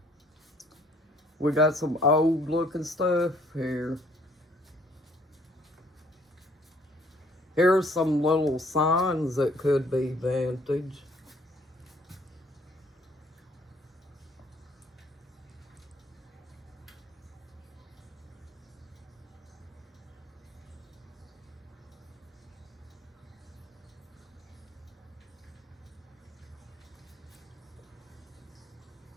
We got some old looking stuff here. Here's some little signs that could be vintage.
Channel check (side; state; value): both; normal; correlation 0.61